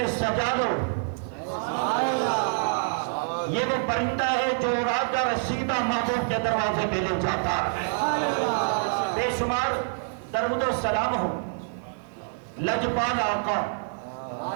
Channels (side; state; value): left; silent; 61 dB below the other